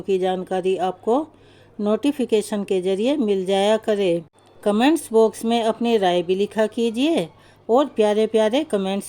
की जानकारी आपको नोटिफिकेशन के ज़रिए मिल जाया करे। कमेंट्स बॉक्स में अपनी राय भी लिखा कीजिए और प्यारे प्यारे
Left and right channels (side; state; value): both; identical; correlation 1.00